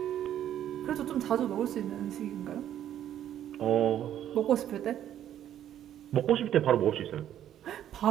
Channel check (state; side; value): quieter; left; 11.0 dB